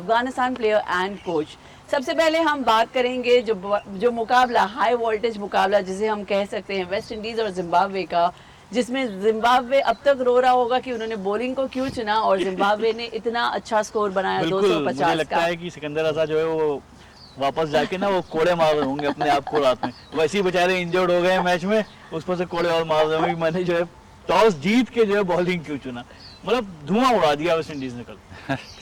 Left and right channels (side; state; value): both; identical; correlation 1.00